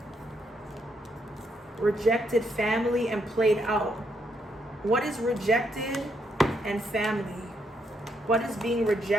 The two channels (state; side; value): normal; both; correlation 0.76